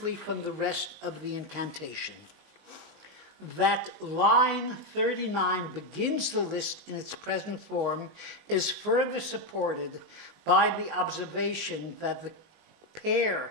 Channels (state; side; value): late; left; 19 ms